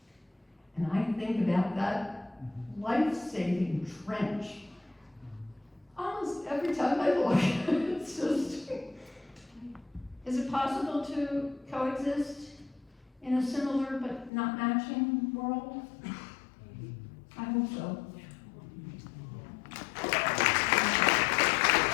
and I think about that life-saving trench. Almost every time I look, it's just, is it possible to coexist in a similar but not matching world? I hope so.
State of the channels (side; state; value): right; drops out; at 14.3 s